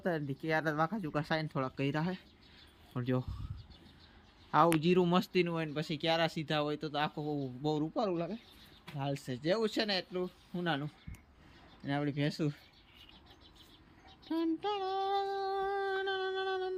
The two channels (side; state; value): both; identical; correlation 1.00